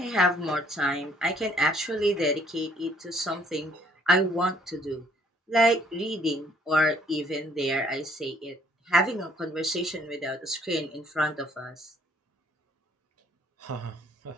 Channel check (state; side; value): normal; both; correlation 0.63